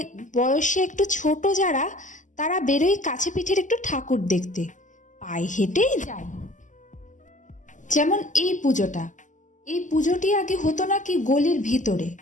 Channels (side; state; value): right; late; 0.37 ms